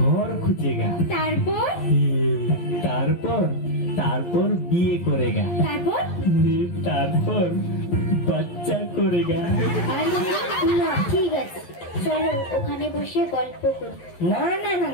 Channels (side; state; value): right; late; 12 ms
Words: খুঁজেগা। তারপর? তারপর তারপর বিয়ে করেগা। তারপর? তারপর বাচ্চা করেগা। না ঠিক আছে, চলো ওখানে বসে গল্প করি। না না না